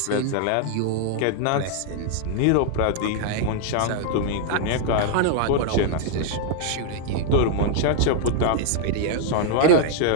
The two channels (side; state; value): both; different; correlation 0.00